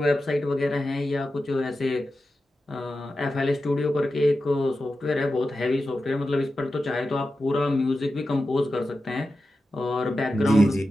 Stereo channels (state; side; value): normal; both; correlation 0.92